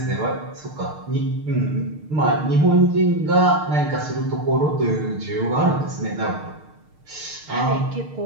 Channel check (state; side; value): late; left; 6.6 ms